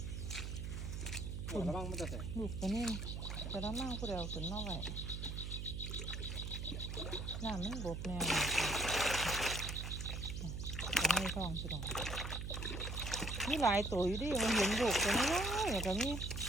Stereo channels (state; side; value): noise; right; hum, 5 dB below the sound